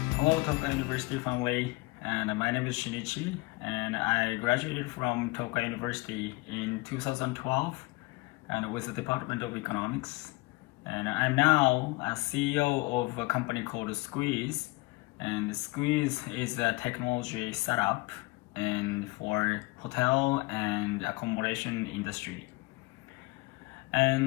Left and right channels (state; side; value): quieter; right; 23.9 dB